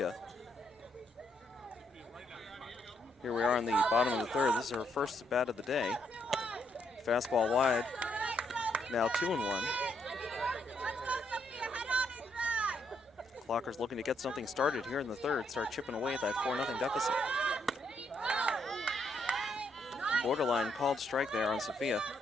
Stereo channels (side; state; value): both; normal; correlation 0.75